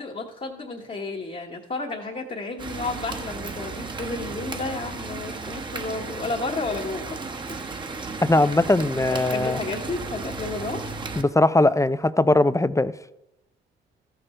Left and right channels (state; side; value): normal; both; correlation 0.72